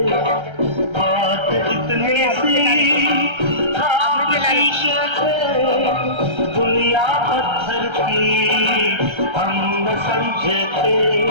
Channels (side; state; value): left; late; 1.3 ms